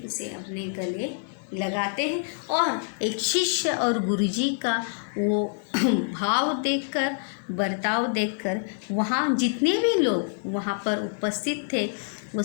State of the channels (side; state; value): right; silent; digital silence